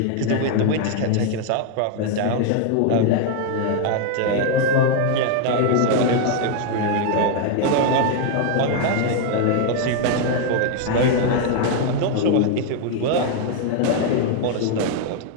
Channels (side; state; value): both; different; correlation 0.01